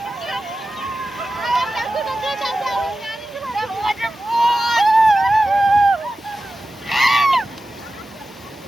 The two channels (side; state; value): both; normal; correlation 0.94